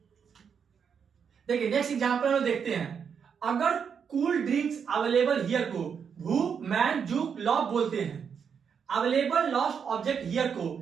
देखिए नेक्स्ट एग्जांपल हम देखते हैं, अगर कूल ड्रिंक्स अवेलेबल हियर को भू मैन जुक लॉब बोलते हैं, अवेलेबल लॉस्ट ऑब्जेक्ट हियर को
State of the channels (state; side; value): quieter; left; 6.9 dB